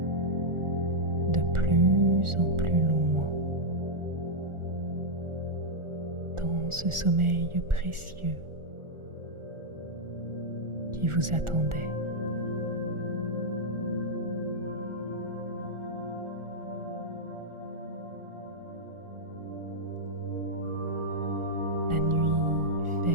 de plus en plus loin dans ce sommeil précieux qui vous attendait. La nuit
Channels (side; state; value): left; late; 1.4 ms